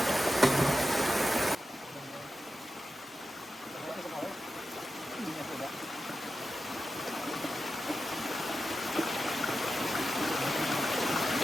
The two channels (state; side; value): normal; both; correlation 0.91